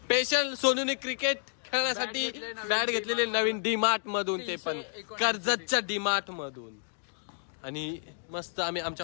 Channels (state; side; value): silent; right; digital silence